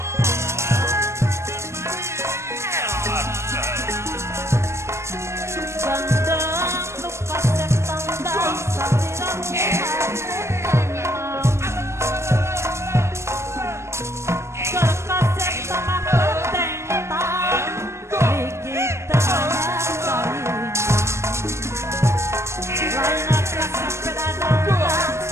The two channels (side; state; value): left; late; 0.13 ms